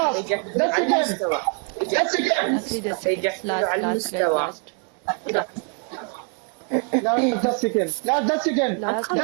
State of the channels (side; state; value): left; quieter; 37.6 dB